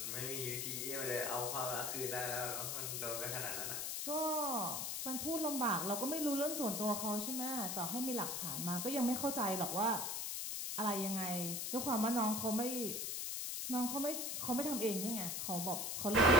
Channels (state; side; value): noise; left; hiss, 2 dB below the sound